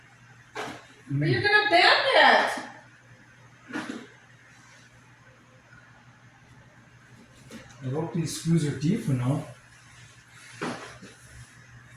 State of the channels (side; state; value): both; identical; correlation 1.00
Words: Or you're gonna bend it. I hope these screws are deep enough.